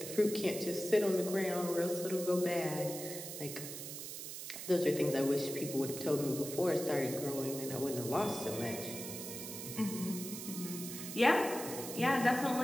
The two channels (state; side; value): noise; right; hiss, 8 dB below the sound